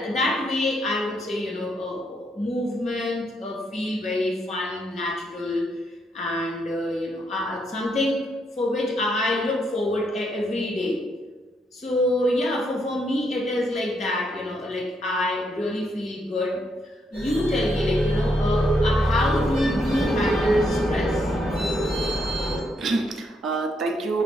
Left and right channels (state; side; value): normal; both; correlation 0.76